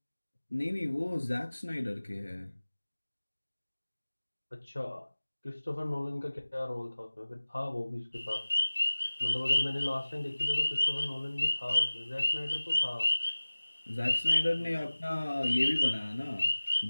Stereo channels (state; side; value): inverted; both; correlation -1.00